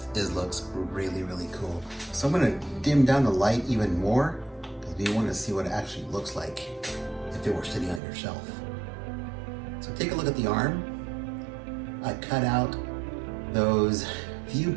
looks really, really cool. So I'm gonna dim down the light even more because we want to see what it actually looks like if it were sitting on your shelf. So take a look at the arm. I cut out those view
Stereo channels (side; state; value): left; drops out; at 8.0 s